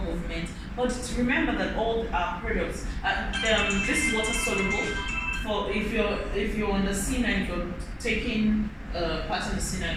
movement. But remember that all our products, this is water soluble. For if you're on the C9, if you're taking part of the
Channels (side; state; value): both; identical; correlation 1.00